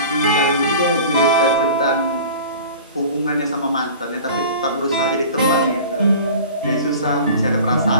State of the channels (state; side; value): inverted; both; correlation -0.40